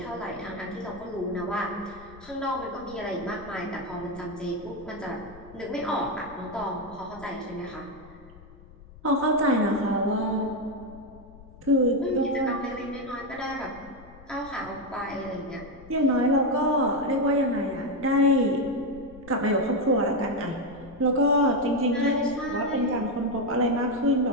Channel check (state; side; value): noise; left; rumble, 20 dB below the sound